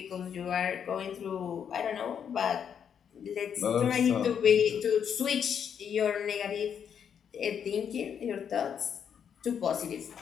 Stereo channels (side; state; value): right; quieter; 8.0 dB